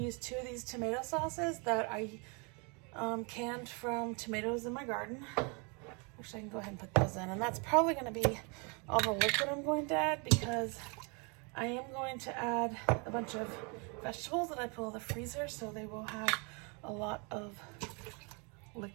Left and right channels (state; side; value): quieter; left; 33.1 dB